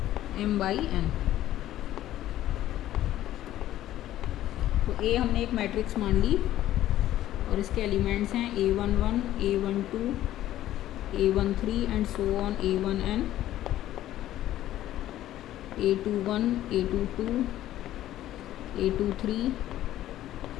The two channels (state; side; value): quieter; right; 13.4 dB